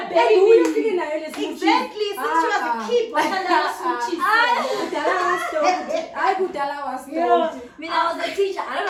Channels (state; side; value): identical; both; correlation 1.00